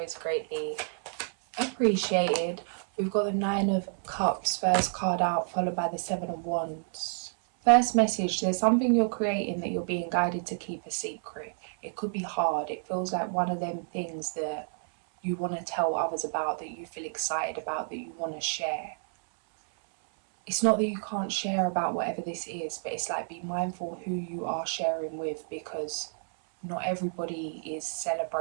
greatly appreciated. We've got the Nine of Cups, first card out, followed by the Seven of Wands. First message, there's something you're creating that you're being guided to keep a secret. It could be hard. It feels like one of them things that you want to tell others about, that you feel excited about, that you want to share. It's not that you can't share about whatever this is, but it's like, be mindful who you are sharing with, because not everybody is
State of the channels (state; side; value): silent; left; 58 dB below the other